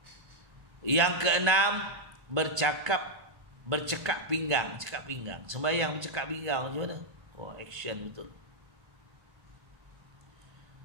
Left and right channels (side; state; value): left; late; 1.3 ms